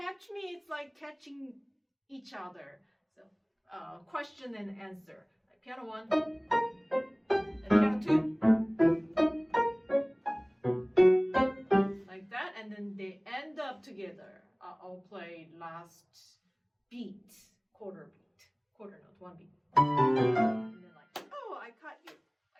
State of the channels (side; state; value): both; identical; correlation 1.00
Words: me, it's like catching each other. So question and answer. Like piano 1, and piano 2. Like that, and then they end up together. I'll play last beat, quarter note, 1 beat. And then like, oh, I caught you,